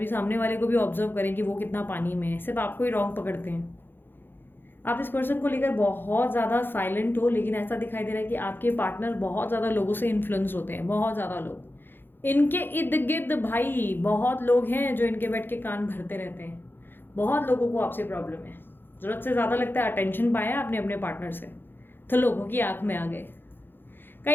सामने वाले को भी ऑब्जर्व करें कि वो कितना पानी में है, सिर्फ आपको ही रॉन्ग पकड़ते हैं। आप इस पर्सन को लेकर बहुत ज़्यादा साइलेंट हो, लेकिन ऐसा दिखाई दे रहा है कि आपके पार्टनर बहुत ज़्यादा लोगों से इन्फ्लुएंस होते हैं, बहुत ज़्यादा लोग इनके इर्द गिर्द। भाई बहुत लोग हैं जो इनके बैठ के कान भरते रहते हैं, बहुत लोगों को आपसे प्रॉब्लम है। ज़रूरत से ज़्यादा लगता है अटेंशन पाया आपने अपने पार्टनर से तो लोगों की आंख में आ गए।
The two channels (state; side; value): late; right; 0.10 ms